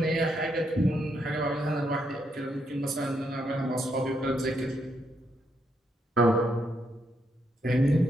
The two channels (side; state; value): both; normal; correlation 0.77